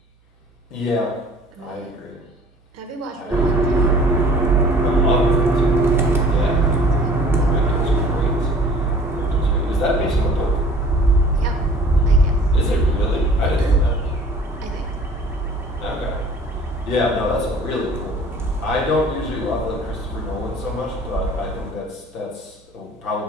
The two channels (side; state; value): both; normal; correlation 0.49